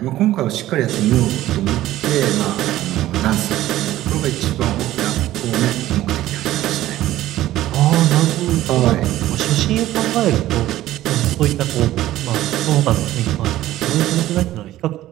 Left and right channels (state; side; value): quieter; left; 14.6 dB